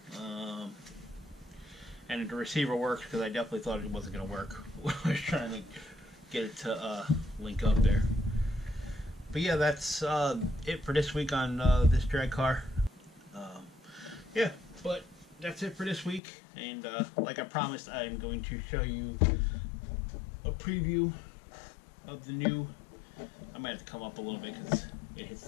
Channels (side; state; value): right; drops out; at 16.2 s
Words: And the receiver works because I definitely thought it wasn't going to work when I was trying to get it to link up there. But yeah, that's it for this week on this drag car. Yeah, but that's it for this week. And like I promised, I'm going to show you a preview of the new. I might have to come up a little bit because it hits